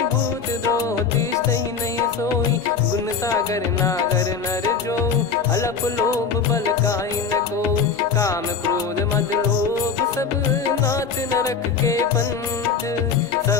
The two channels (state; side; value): quieter; right; 5.8 dB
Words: भूत द्रोह तिष्ठहि नहीं सोई। गुण सागर नागर नर जो अलप लोभ बल काई न को। काम क्रोध मद लोभ सब नाथ नरक के पंथ।